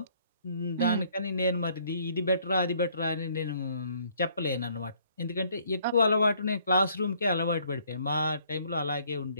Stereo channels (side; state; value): both; inverted; correlation -0.63